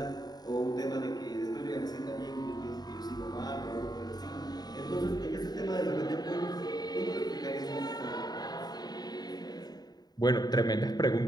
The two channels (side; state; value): right; late; 0.20 ms